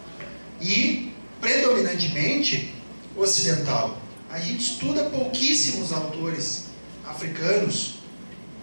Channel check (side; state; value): both; inverted; correlation -1.00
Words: e predominantemente ocidental. A gente estuda pouquíssimos autores africanos,